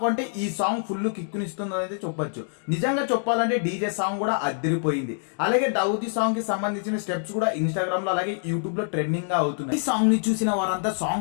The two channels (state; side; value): silent; right; digital silence